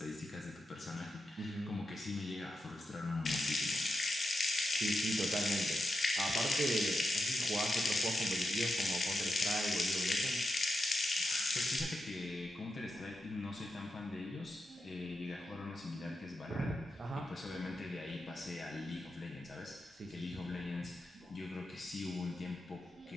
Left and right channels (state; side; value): normal; both; correlation 0.88